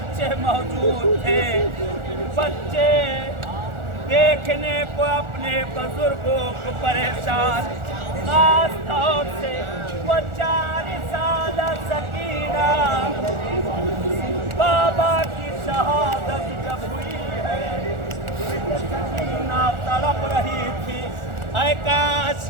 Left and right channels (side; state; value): left; late; 1.4 ms